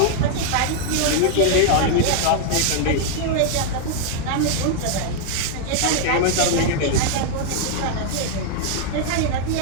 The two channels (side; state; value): both; different; correlation 0.00